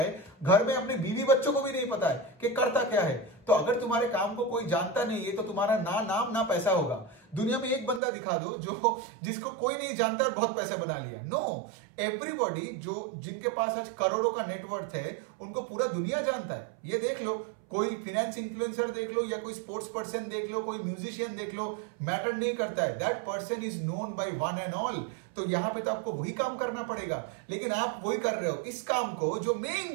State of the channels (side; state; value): left; drops out; at 8.0 s